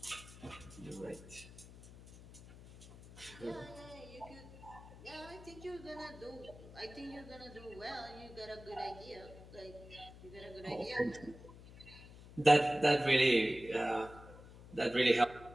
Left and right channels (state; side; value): noise; left; hum, 17 dB below the sound